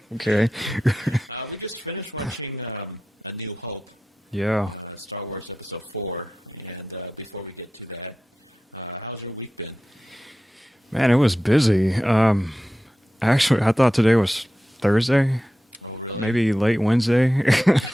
Okay. We just finished watching A New Hope. Yeah. Star Wars Episode 4. And before we get to that, how's your week been? Man, it was busy. Actually, I thought today was Thursday. Oh, really? Maybe late Wednesday.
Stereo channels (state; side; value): normal; both; correlation 0.92